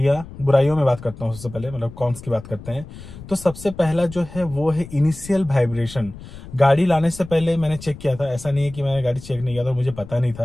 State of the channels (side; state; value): left; noise; rumble, 15 dB below the sound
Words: में बात करता हूँ। सबसे पहले मतलब कॉन्स की बात करते हैं। तो सबसे पहला जो है वो है इनिशियल वाइब्रेशन। गाड़ी लाने से पहले मैंने चेक किया था, ऐसा नहीं है कि मैंने गाड़ी चेक नहीं किया था, मुझे पता नहीं